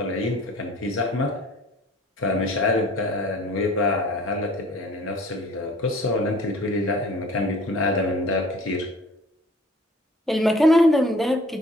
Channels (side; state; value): both; normal; correlation 0.50